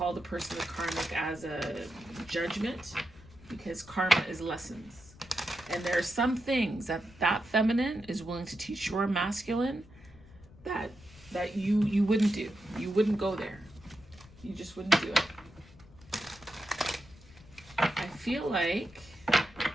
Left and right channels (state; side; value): noise; left; rumble, 22 dB below the sound